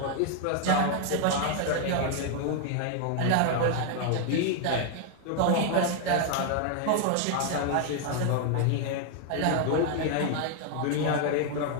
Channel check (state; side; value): different; both; correlation 0.00